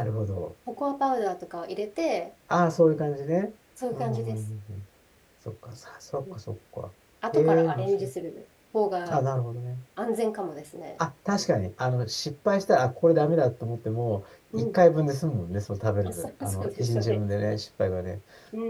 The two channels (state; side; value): identical; both; correlation 1.00